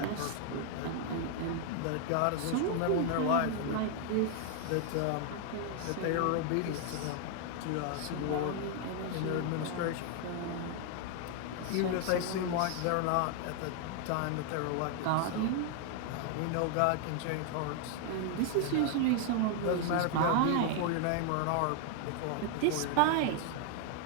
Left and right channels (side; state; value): both; different; correlation 0.00